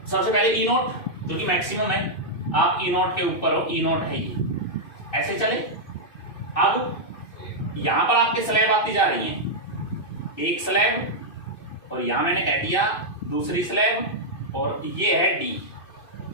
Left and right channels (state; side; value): late; right; 2.5 ms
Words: सबसे पहले E0 जो कि मैक्सिमम है, आप E0 के ऊपर हो, E0 है ये, ऐसे चले। अब यहां पर आपके स्लैब आती जा रही हैं, एक स्लैब, और यहां मैंने कह दिया दूसरी स्लैब, और ये है D,